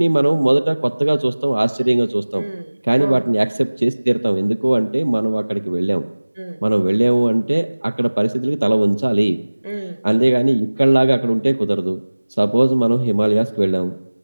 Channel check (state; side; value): inverted; both; correlation -1.00